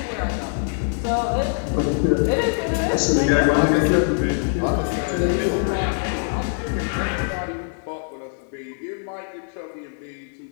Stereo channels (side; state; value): right; silent; 63 dB below the other